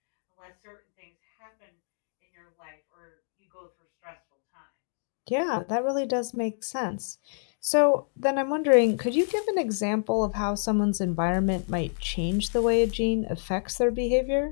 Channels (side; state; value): right; silent; digital silence